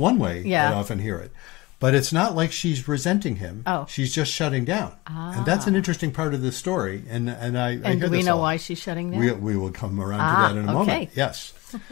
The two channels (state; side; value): quieter; right; 21.8 dB